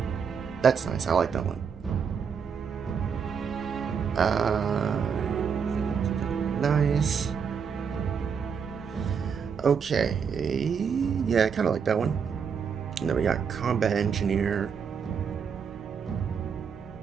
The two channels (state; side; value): quieter; left; 6.6 dB